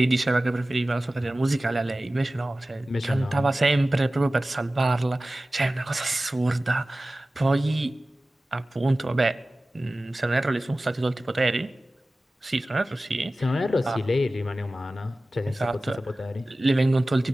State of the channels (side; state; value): both; normal; correlation 0.96